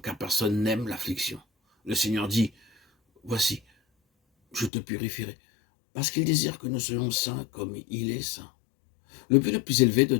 personne n'aime l'affliction. Le Seigneur dit, voici, je te purifierai, parce qu'il désire que nous soyons saints comme il est saint. Le but le plus élevé de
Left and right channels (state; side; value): drops out; right; at 4.7 s